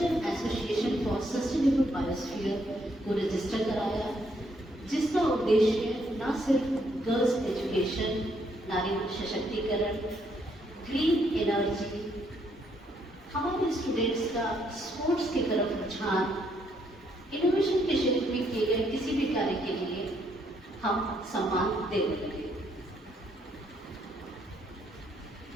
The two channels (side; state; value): both; normal; correlation 0.72